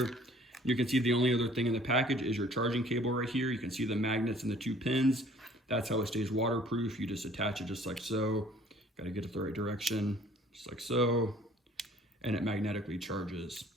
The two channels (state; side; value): normal; both; correlation 0.55